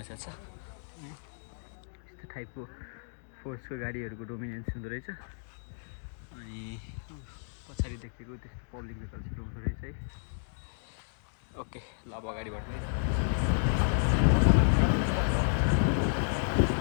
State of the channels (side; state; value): right; silent; digital silence